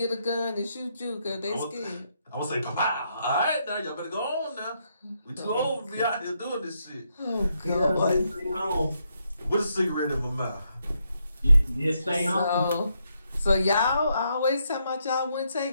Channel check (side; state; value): both; inverted; correlation -0.78